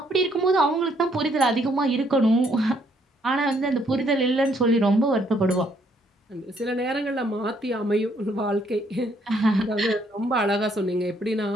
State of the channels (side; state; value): both; normal; correlation 0.69